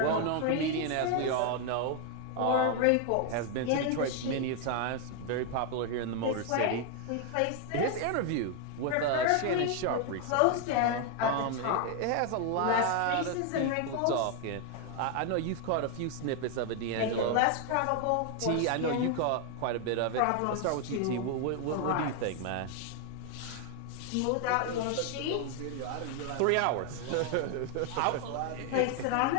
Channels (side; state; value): both; different; correlation 0.00